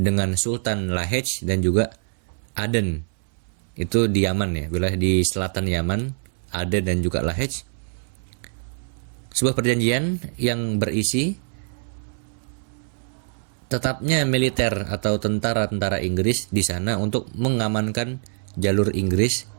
Sultan Lahej dan juga Aden. Itu di Yaman ya, wilayah di selatan Yaman, Aden dan juga Lahej. Sebuah perjanjian yang berisi tetapnya militer atau tentara-tentara Inggris di sana untuk mengamankan jalur Inggris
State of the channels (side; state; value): left; silent; 63 dB below the other